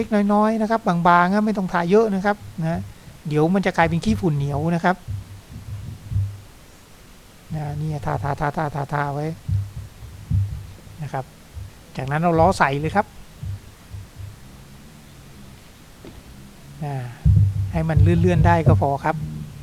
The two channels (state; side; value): identical; both; correlation 1.00